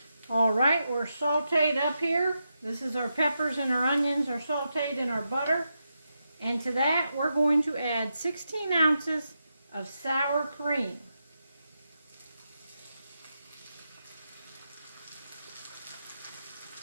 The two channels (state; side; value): inverted; both; correlation -0.86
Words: All right, we're sauteed up here. This is our peppers and our onions are sauteed in our butter. And to that, we're going to add 16 ounces of sour cream.